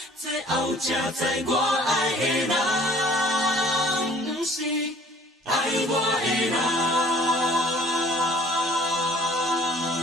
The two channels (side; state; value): both; normal; correlation 0.52